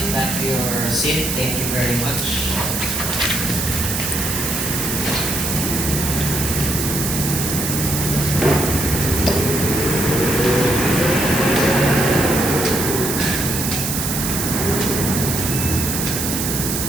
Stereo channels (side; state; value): right; noise; hiss, 2 dB below the sound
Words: back to your seat. Thank you very much.